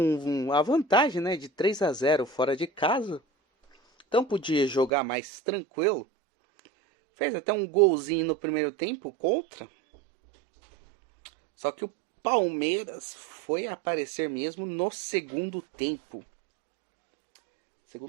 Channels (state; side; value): drops out; left; at 4.9 s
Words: a vantagem, né, de 3-0 fora de casa. Então podia jogar mais tranquilo. Fez até um golzinho no primeiro tempo contra. Só que o Palmeiras foi aparecer mesmo no segundo tempo.